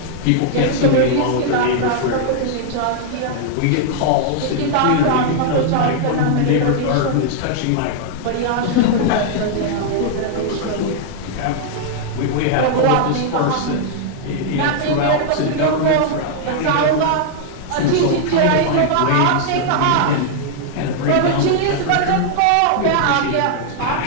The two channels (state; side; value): different; both; correlation -0.01